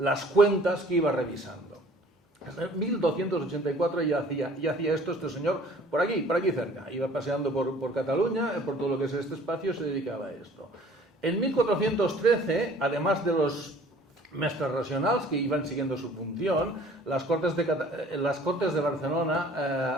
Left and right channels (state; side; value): normal; both; correlation 0.52